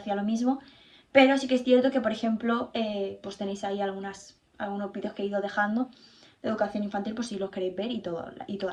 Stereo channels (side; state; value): both; identical; correlation 1.00